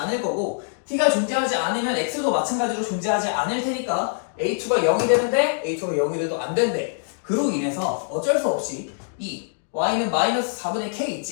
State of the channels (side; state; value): right; silent; digital silence